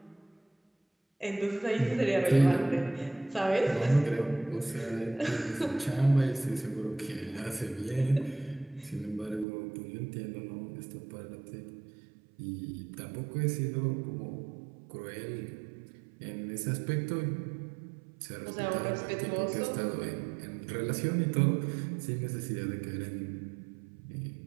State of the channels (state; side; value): drops out; left; at 9.5 s